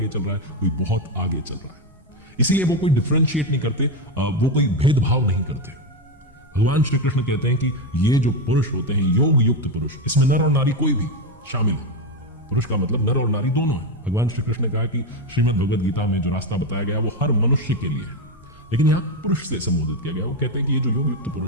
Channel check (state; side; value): normal; both; correlation 0.10